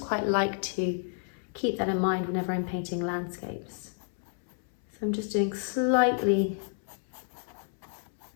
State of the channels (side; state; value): right; silent; 58 dB below the other